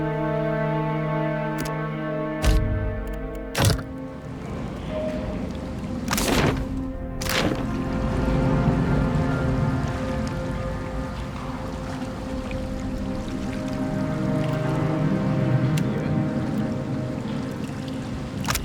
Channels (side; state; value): both; identical; correlation 1.00